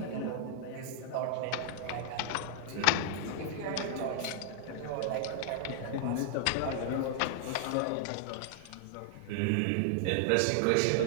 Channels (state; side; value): different; both; correlation -0.01